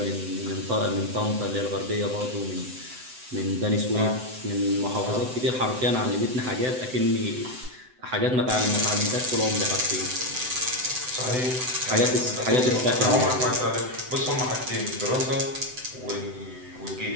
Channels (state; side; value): late; left; 7.9 ms